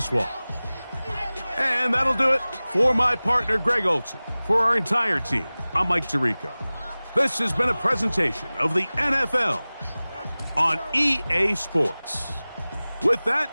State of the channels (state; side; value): inverted; both; correlation -0.98